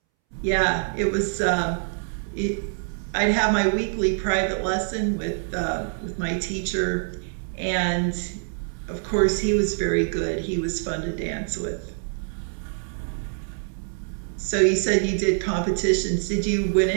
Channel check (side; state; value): left; silent; 62 dB below the other